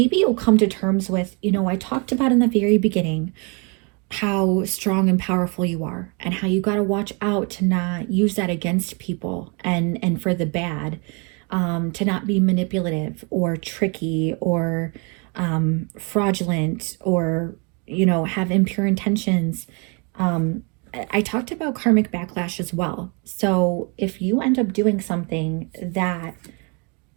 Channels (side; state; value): left; quieter; 33.6 dB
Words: you'll come to terms with, I talked about in the very beginning how strong and powerful you are, and how you got to watch out to not use that against people and for the bad, to not be manipulative or tricky or fraudulent or, have impure intentions. I talked about karmic backlash as well. So if you end up doing something that